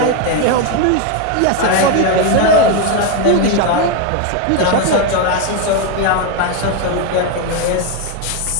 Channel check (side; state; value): both; different; correlation 0.02